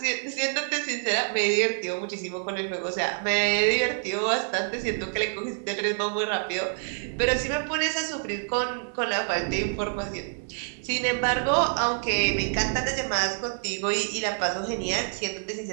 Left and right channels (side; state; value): left; silent; digital silence